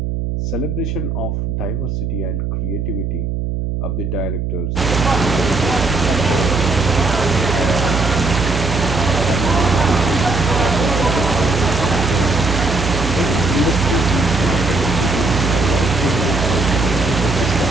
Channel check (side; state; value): right; noise; hum, 2 dB below the sound